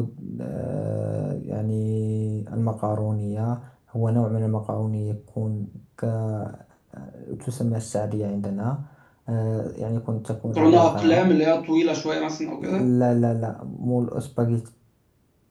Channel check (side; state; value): both; identical; correlation 1.00